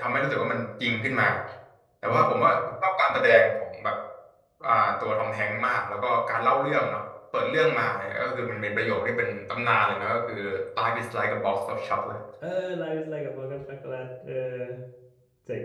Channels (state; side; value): identical; both; correlation 1.00